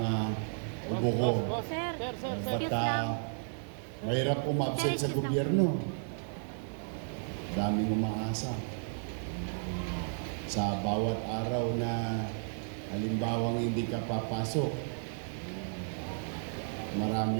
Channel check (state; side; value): silent; left; digital silence